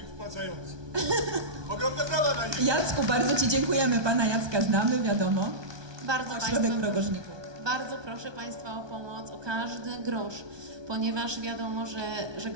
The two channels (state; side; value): late; left; 1.2 ms